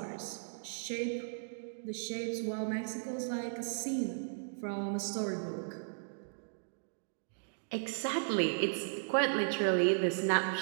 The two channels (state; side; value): silent; left; digital silence